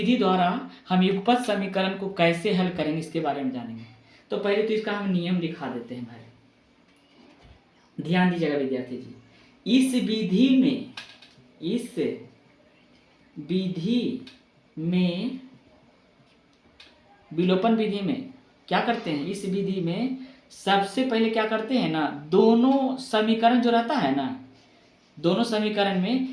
द्वारा हम युगपत समीकरण को कैसे हल करेंगे इसके बारे में जानेंगे। तो पहले तो इसका हम नियम लिखा देते हैं भाई, ध्यान दीजिएगा विद्यार्थी जी। इस विधि में विलोपन विधि में क्या करते हैं? इस विधि में सबसे पहले क्या करते हैं ना, दोनों समीकरण जो रहता है ना, दोनों समीकरण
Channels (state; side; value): identical; both; correlation 1.00